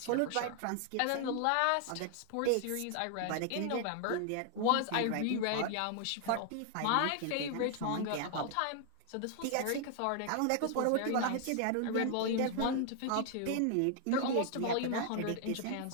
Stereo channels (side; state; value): both; different; correlation 0.00